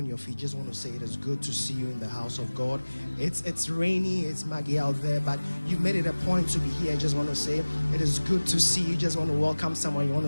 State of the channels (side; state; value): both; inverted; correlation -1.00